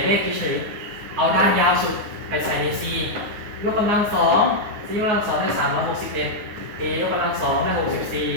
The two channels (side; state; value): left; late; 9.7 ms